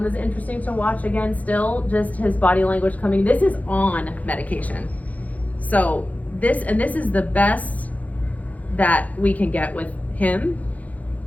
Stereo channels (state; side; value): late; right; 0.074 ms